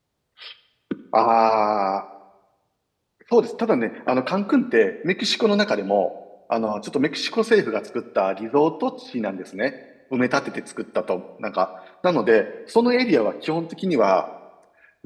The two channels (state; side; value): identical; both; correlation 1.00